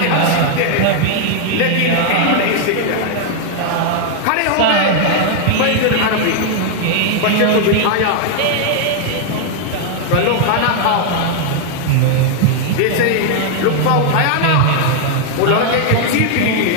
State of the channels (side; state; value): both; different; correlation 0.00